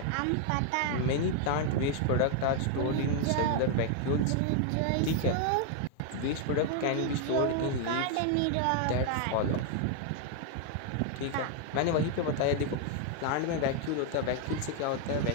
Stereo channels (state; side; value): different; both; correlation 0.00